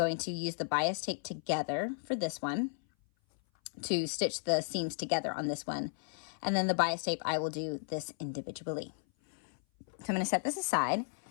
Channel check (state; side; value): silent; right; 55 dB below the other